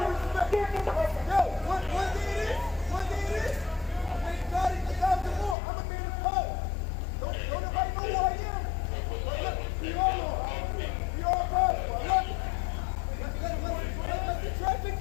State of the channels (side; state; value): right; drops out; at 5.6 s